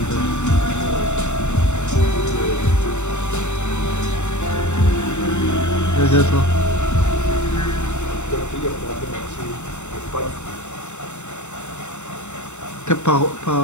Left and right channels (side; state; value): right; late; 0.83 ms